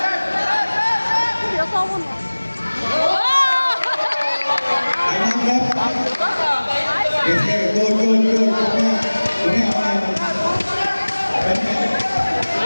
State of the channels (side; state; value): both; inverted; correlation -1.00